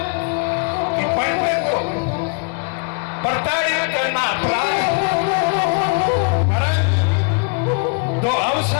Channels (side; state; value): right; quieter; 36.8 dB